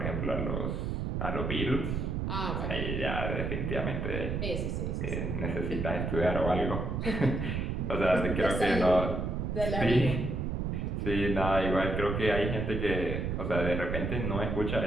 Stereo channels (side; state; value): right; noise; rumble, 1 dB below the sound